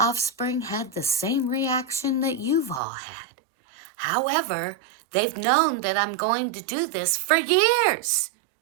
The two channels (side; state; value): left; drops out; at 2.8 s